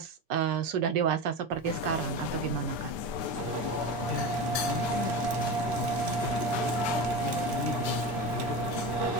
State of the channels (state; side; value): normal; both; correlation 0.24